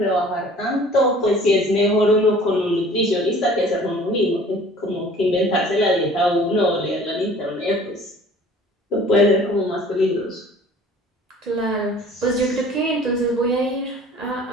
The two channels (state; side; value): normal; both; correlation 0.49